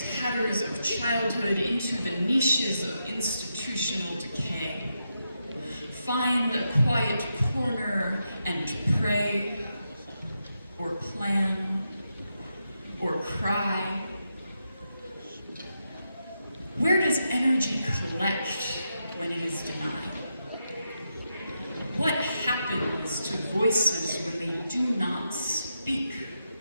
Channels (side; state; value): both; inverted; correlation -0.85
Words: tatters of childhood into the niches of institutional decay. Find a quiet corner and pray, or plan, or cry. Where does energy collect when it is denied? What happens to voices when they do not speak?